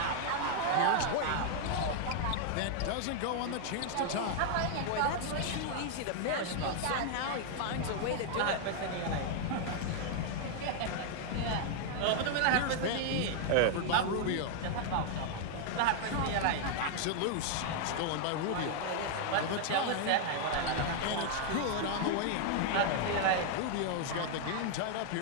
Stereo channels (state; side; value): different; both; correlation 0.00